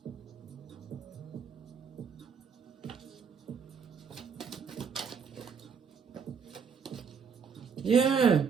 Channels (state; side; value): quieter; left; 6.3 dB